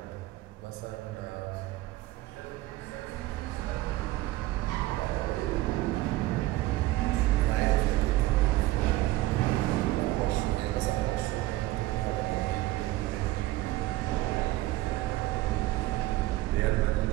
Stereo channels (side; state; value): left; quieter; 17.5 dB